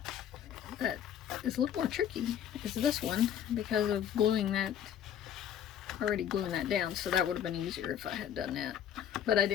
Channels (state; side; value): quieter; right; 9.7 dB